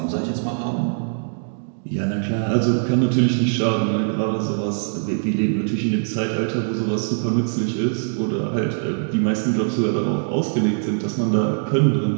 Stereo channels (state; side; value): silent; left; digital silence